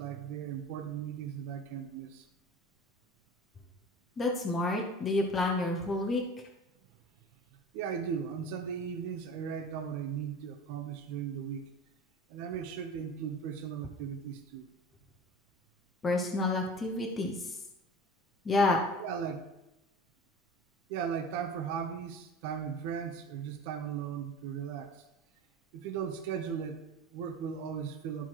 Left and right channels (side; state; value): both; normal; correlation 0.37